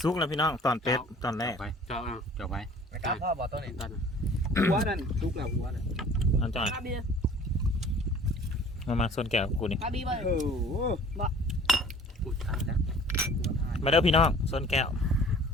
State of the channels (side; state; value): both; normal; correlation 0.48